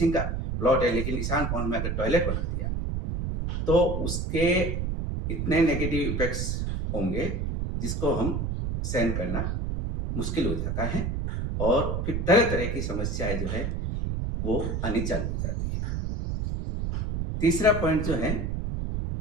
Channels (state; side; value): noise; right; rumble, 1 dB below the sound